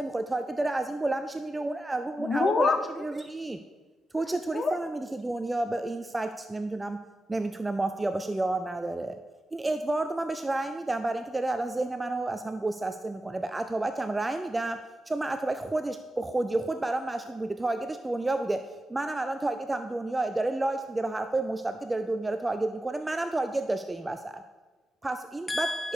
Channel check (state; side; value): normal; both; correlation 0.91